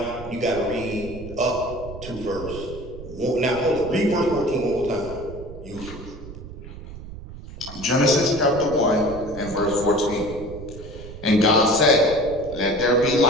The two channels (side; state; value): right; noise; rumble, 13 dB below the sound